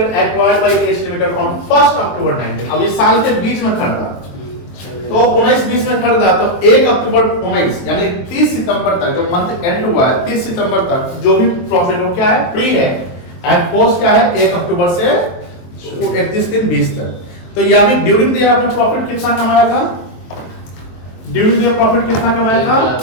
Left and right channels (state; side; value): late; right; 23 ms